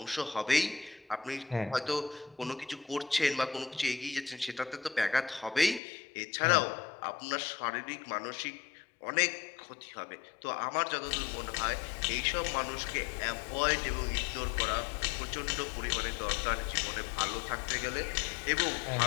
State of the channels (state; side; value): drops out; right; at 5.8 s